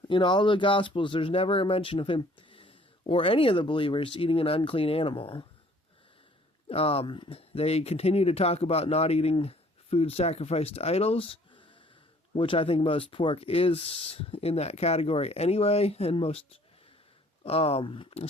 in all the Gospels, there's never a mention of him or any of the believers eating an unclean animal. They continue to talk about not eating food sacrificed to idols, which I think most pork is in that category anyway, and most,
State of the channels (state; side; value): normal; both; correlation 0.57